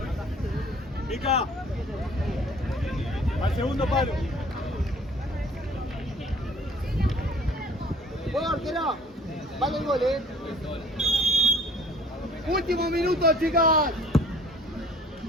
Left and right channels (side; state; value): both; normal; correlation 0.53